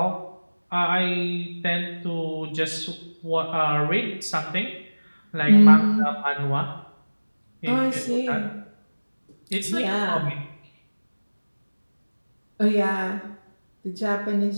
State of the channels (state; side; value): inverted; both; correlation -1.00